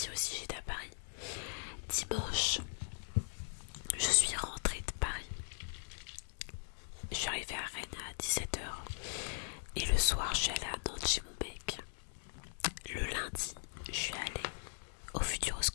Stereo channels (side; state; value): right; silent; digital silence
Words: aussi, j'étais à Paris. Dimanche, je suis rentrée de Paris. Je suis arrivée à Rennes à 17h. Et le soir, je suis allée à Nantes chez mon mec. Le lundi, je suis allée au